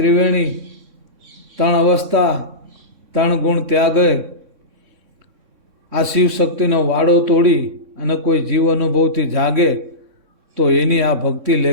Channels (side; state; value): left; late; 3.6 ms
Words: 3 અવસ્થા 3 ગુણ ત્યાગે. આ શિવ શક્તિનો વાડો તોડી અને કોઈ જીવ અનુભવથી જાગે તો એની આ ભક્તિ